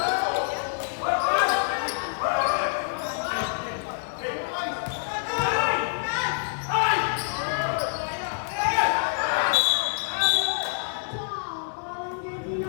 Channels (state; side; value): silent; right; digital silence